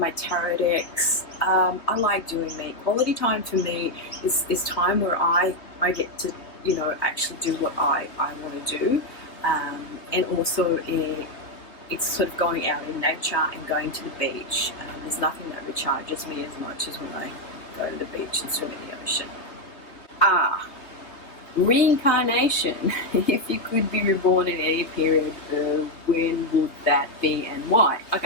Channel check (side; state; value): right; late; 3.4 ms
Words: tarot decks. I like doing me. Quality time for me is time where I get to, actually do what I want to do. And also it's sort of going out in nature and going to the beach. There's nothing that recharges me as much as when I go to the beach and swim in the ocean. Reincarnation. If you could be reborn in any period, when would that be and why?